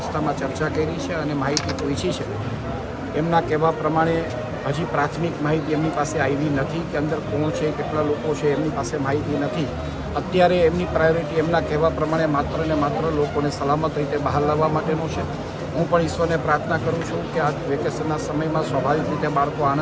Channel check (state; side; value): identical; both; correlation 1.00